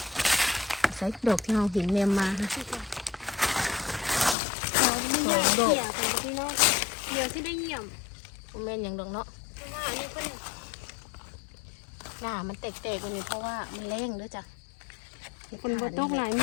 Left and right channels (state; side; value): drops out; right; at 4.4 s